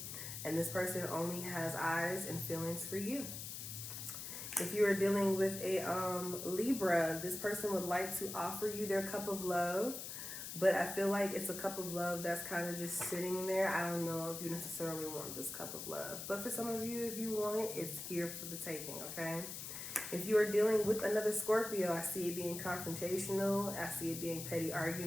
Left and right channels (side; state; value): left; noise; hiss, 7 dB below the sound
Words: And this person only has eyes and feelings for you. If you are dealing with a Libra, this person would like to offer you their cup of love. But I feel like it's a cup of love that's kind of just sitting there. I don't know if you necessarily want this cup of love. But for some of you, if you want it, it's here for the taking, okay? If you are dealing with another Scorpio, I see it being confrontational. I see it being petty